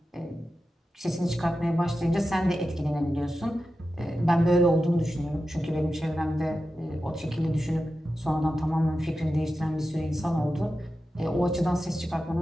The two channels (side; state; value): both; normal; correlation 0.92